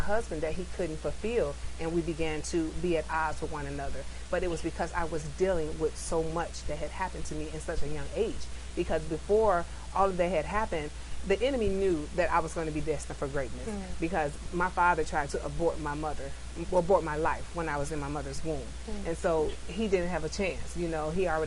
that he couldn't fulfill, and we began to be at odds with one another. But it was because I was dealing with so much that had happened to me in such a young age. Because before all of that had happened, the enemy knew that I was going to be destined for greatness, because my father tried to abort my life when I was in my mother's womb. And so he didn't have a chance. You know,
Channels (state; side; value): identical; both; correlation 1.00